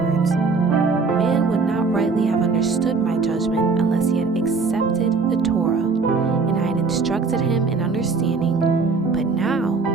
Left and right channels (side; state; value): left; quieter; 4.4 dB